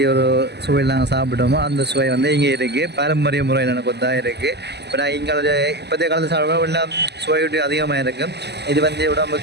ஒரு சுவையில் நாங்கள் சாப்பிட்டோமோ அந்த சுவை வந்து இங்கே இருக்குது. பாரம்பரிய முறையில் எனக்கு கொத்தாக இருக்குது. இப்போ நான் இங்கே இப்போதைய காலத்தில் சாப்பிடுவோம் எல்லாம் சுவையூட்டி அதிகமாக இருக்கும். இது வந்து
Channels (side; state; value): left; late; 0.49 ms